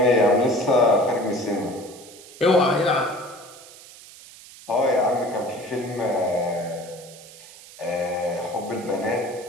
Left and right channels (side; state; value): right; noise; hiss, 19 dB below the sound